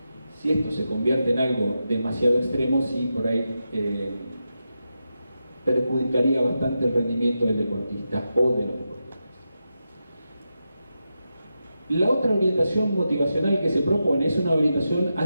Si esto se convierte en algo demasiado extremo, sí, por ahí perjudicaría bastante el rendimiento del deportista o de los deportistas. La otra orientación motivacional que se propone es una orientación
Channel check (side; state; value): both; inverted; correlation -0.89